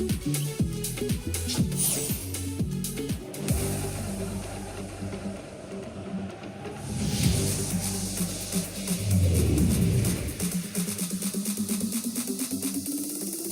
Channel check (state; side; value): identical; both; correlation 1.00